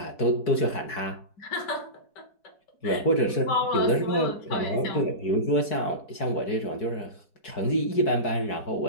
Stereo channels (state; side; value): late; right; 4.7 ms